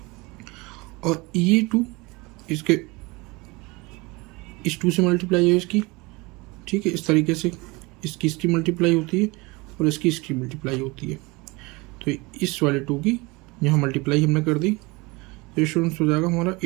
और ये 2 इसके इस 2 से मल्टीप्लाई है इसकी। ठीक है, इस तरीके से इसकी मल्टीप्लाई होती है और इसकी मल्टीप्लाई होती है। तो इस वाले 2 की यहाँ मल्टीप्लाई हमने कर दी, तो स्टूडेंट्स हो जाएगा हमारा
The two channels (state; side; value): quieter; left; 24.8 dB